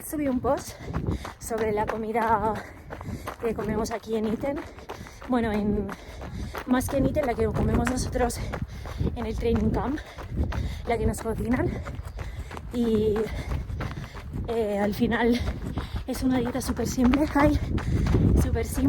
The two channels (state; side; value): identical; both; correlation 1.00